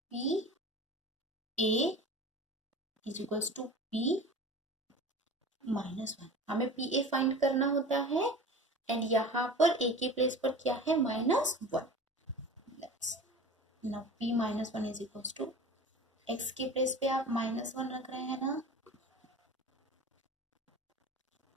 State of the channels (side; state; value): both; normal; correlation 0.37